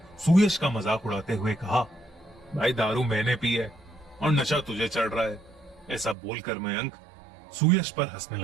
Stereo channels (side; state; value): left; drops out; at 6.2 s